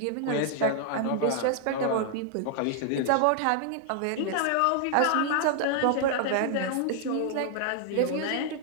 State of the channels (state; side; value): different; both; correlation 0.00